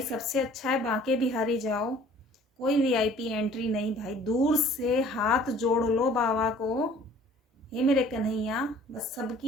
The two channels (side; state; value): both; normal; correlation 0.52